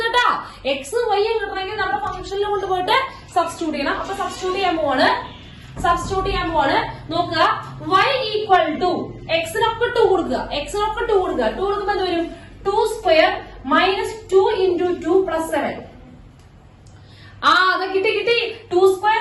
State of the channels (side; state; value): both; identical; correlation 1.00